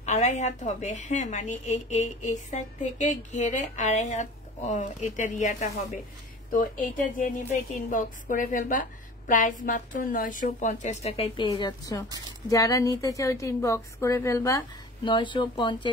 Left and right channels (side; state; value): both; normal; correlation 0.41